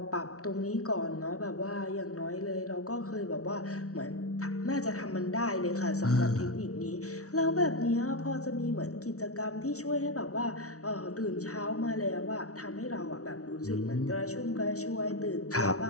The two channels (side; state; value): right; late; 0.65 ms